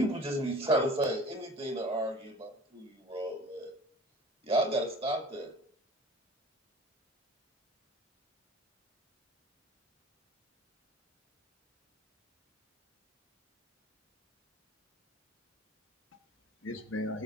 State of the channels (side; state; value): both; normal; correlation 0.44